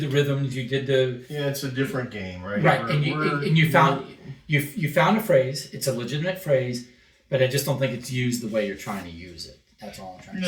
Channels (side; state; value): both; identical; correlation 1.00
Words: rhythms. You did the Yeah, it's a different game, right? right, We're- and you found you found a phrase. It's a legitimate phrase, but I just don't think it's used the way you're trying to use it. That's all I'm trying to say.